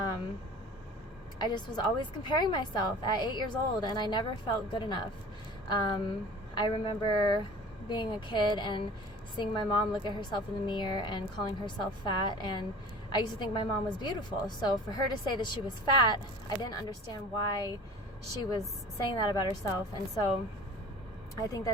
just was always comparing myself at 8 years old, and I never felt good enough. I remember being a kid and seeing my mom look at herself in the mirror and calling herself fat, and I used to think my mom was beautiful. So for her to say that she was fat, I didn't understand why she was saying that about herself. And so I think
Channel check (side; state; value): both; normal; correlation 0.42